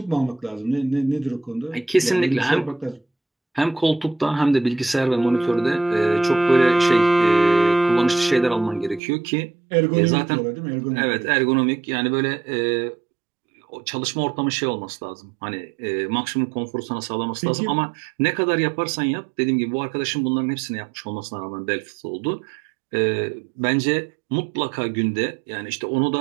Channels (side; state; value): left; drops out; at 9.0 s